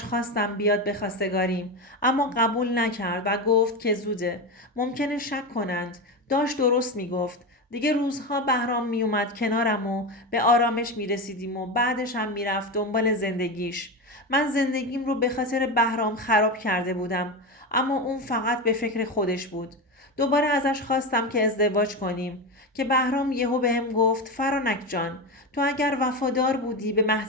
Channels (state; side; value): normal; both; correlation 0.18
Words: خواستم بیاد به خواستگاریم، اما قبول نکرد و گفت که زوده، ممکنه شک کنند. داشت درست میگفت. دیگه روزها بهرام میومد کنارم و به آرامش میرسیدیم و بعدش هم میرفت دنبال زندگیش. من زندگیم رو به خاطر بهرام خراب کرده بودم، اما اون فقط به فکر خودش بود. دوباره ازش خواستم که ازدواج کنیم که بهرام یهو بهم گفت فرانک جان، تو اگر وفادار بودی به